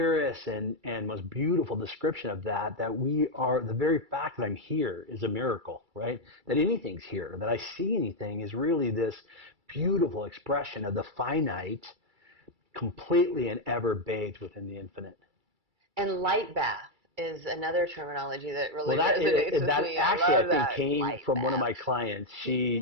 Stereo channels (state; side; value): late; left; 2.3 ms